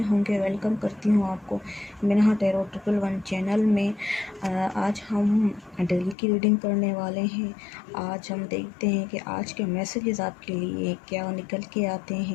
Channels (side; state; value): right; drops out; at 6.2 s